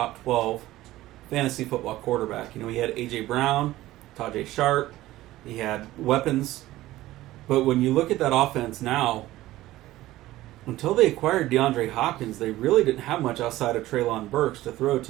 12 fantasy football quarterback. You know, he had A.J. Brown, Tajay Sharp. He had weapons. But when you look at that offense now, until they acquired DeAndre Hopkins, they really didn't have much outside of Treylon Burks to throw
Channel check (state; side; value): quieter; left; 16.2 dB